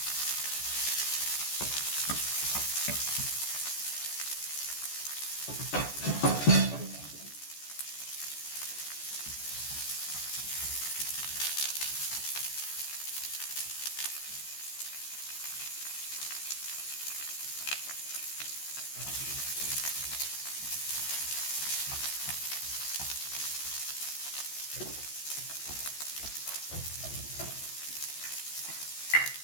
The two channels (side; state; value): right; late; 14 ms